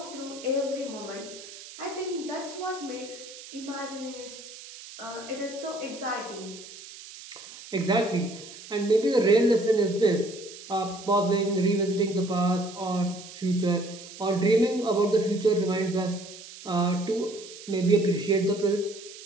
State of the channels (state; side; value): noise; right; hiss, 15 dB below the sound